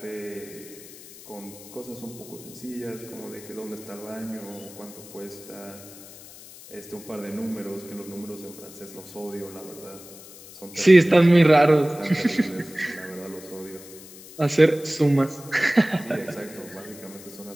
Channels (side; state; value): left; noise; hiss, 18 dB below the sound